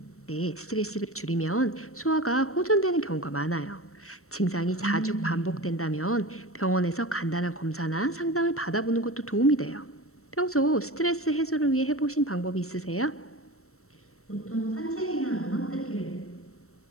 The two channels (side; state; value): right; late; 0.63 ms